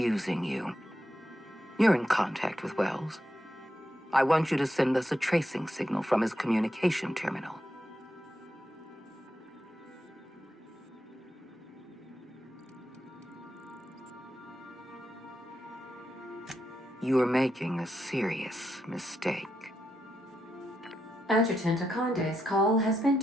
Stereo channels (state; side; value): normal; both; correlation 0.84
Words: you. You're in contact with Wells. I want you to send us a tracing signal from his communication terminal. You are making a serious mistake. Adjutant Akande's call has been